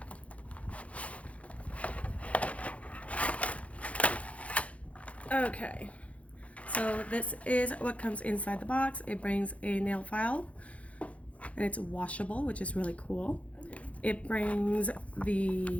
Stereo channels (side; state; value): right; late; 0.065 ms